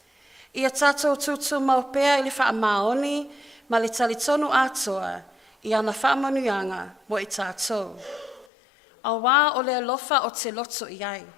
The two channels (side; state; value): right; drops out; at 8.5 s